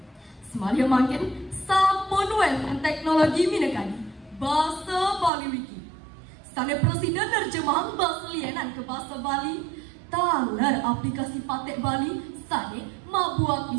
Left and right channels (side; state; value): left; drops out; at 5.3 s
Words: Semalia makin sampun wenten teknologi mineka di bahasa Bali Wiki. Sane presiden nerjemahan bahasa lienan ke bahasa Bali. Taler aplikasi patek Bali sane mabuat